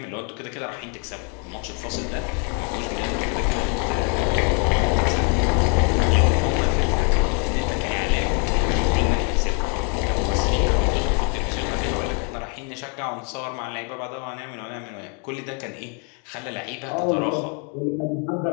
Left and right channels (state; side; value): quieter; right; 38.5 dB